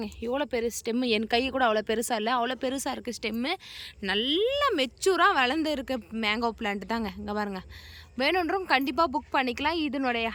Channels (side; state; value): both; identical; correlation 1.00